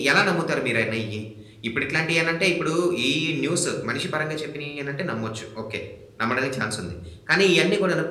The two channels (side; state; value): both; identical; correlation 1.00